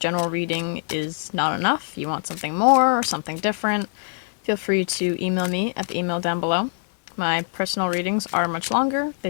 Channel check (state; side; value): silent; right; digital silence